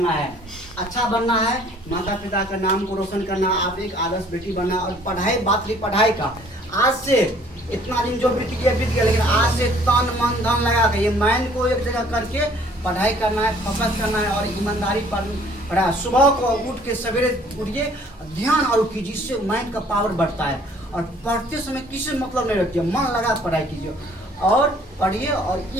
है, अच्छा बनना है, माता पिता का नाम को रोशन करना, आप एक आदर्श बेटी बनना है। और पढ़ाई, बात रही पढ़ाई का, आज से इतना दिन जो बीत गया, लेकिन आज से तन मन धन लगा के ये माइंड को एक जगह करके पढ़ाई करना है, फोकस करना है और ईमानदारी पढ़ा। सुबह को उठ के सवेरे उठिए, ध्यान और कीजिए, इससे माइंड का पावर बढ़ता है। और पढ़ते समय किसी मतलब नहीं रखिए, मन लगा पढ़ाई कीजिए और पढ़िए, और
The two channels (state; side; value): normal; both; correlation 0.57